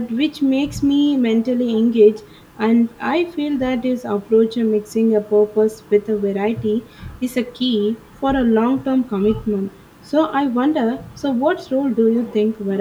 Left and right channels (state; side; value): identical; both; correlation 1.00